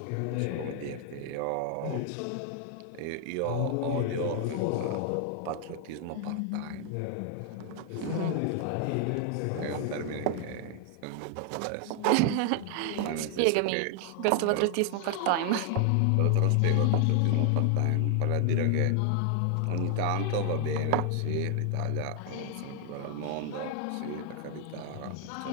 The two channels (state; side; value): different; both; correlation 0.00